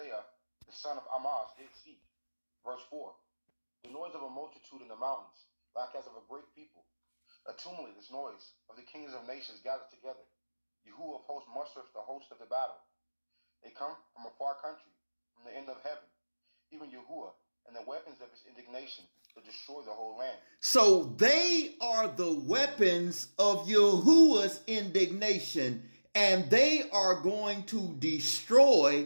the son of Amoz, did see. Verse 4. The noise of a multitude in the mountains, like as of a great people. A tumultuous noise of the kings of nations gathered together. Yahuwah of hosts mustereth the host of the battle. They come from a far country, from the end of heaven, even Yahuwah, and the weapons of his indignation to destroy the whole land. So they are the weapons of Yahuwah's indignation, and they are going to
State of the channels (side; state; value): both; inverted; correlation -1.00